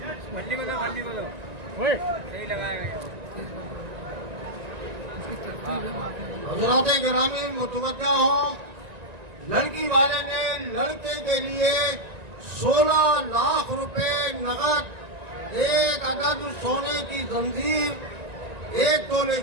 को दो सही लगाएगा। हज़रात गिरामी मुतवज्जा हो, लड़की वाले ने लड़के के लिए 16 लाख रुपए नगद, एक अदद सोने की जंजीर 1 तोले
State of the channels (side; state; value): left; late; 1.9 ms